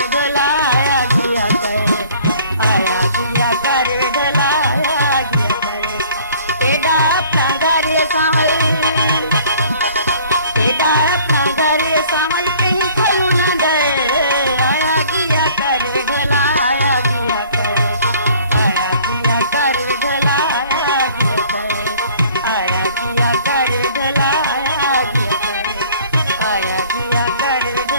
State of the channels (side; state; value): both; inverted; correlation -0.53